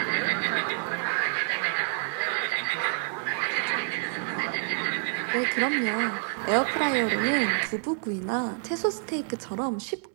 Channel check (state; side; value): silent; left; 59 dB below the other